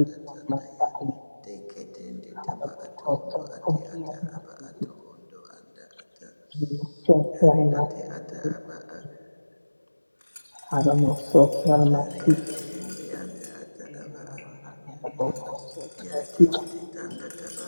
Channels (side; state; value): both; inverted; correlation -1.00